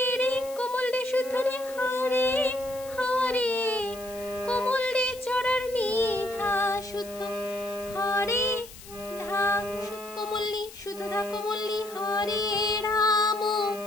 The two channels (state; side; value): noise; left; hiss, 17 dB below the sound